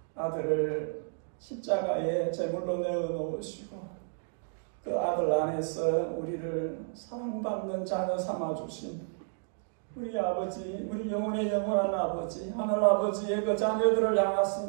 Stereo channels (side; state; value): left; silent; digital silence